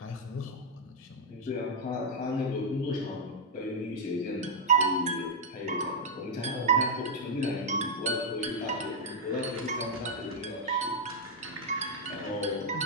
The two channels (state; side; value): normal; both; correlation -0.03